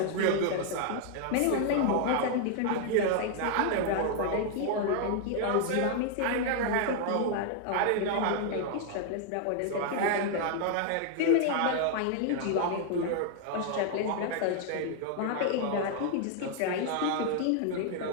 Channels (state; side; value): different; both; correlation 0.00